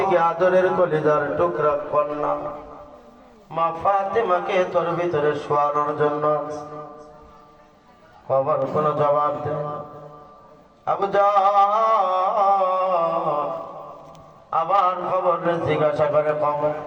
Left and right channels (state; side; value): identical; both; correlation 1.00